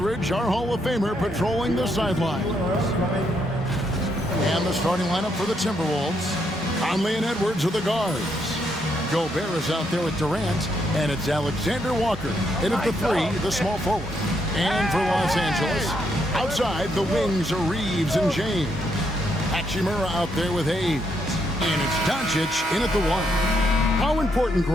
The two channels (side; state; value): both; normal; correlation 0.76